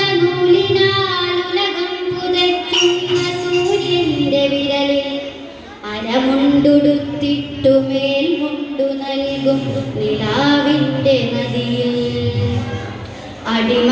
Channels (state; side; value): identical; both; correlation 1.00